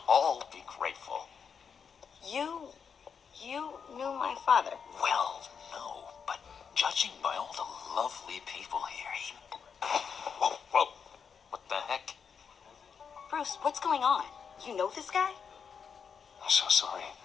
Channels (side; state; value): right; quieter; 6.5 dB